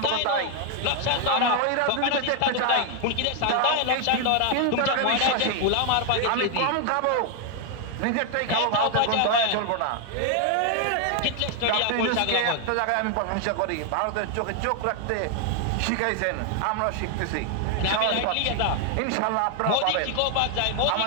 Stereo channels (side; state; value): both; different; correlation 0.00